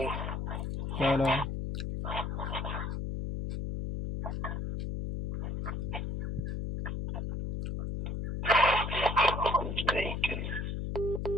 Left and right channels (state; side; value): noise; left; hum, 3 dB below the sound